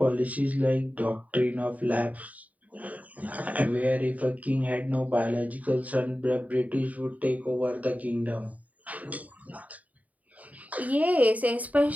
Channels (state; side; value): late; left; 0.072 ms